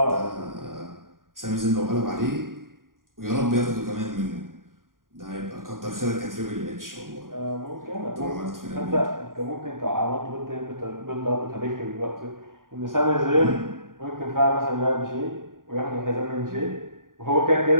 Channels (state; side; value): late; left; 0.90 ms